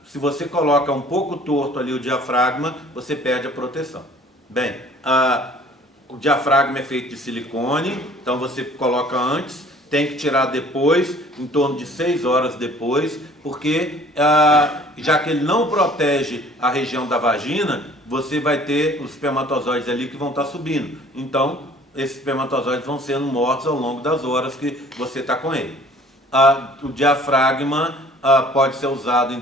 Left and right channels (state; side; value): normal; both; correlation 0.52